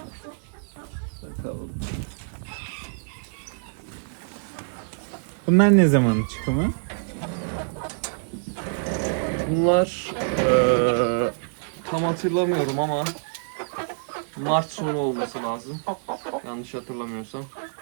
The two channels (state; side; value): silent; left; digital silence